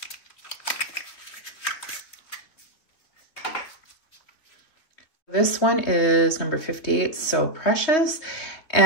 This one is number 58, So Precious.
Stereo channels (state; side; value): late; right; 3.5 ms